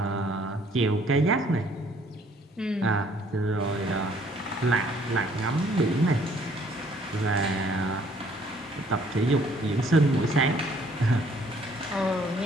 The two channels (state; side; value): normal; both; correlation 0.62